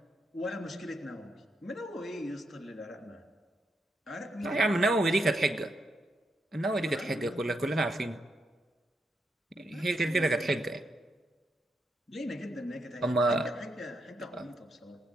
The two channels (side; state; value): both; normal; correlation 0.81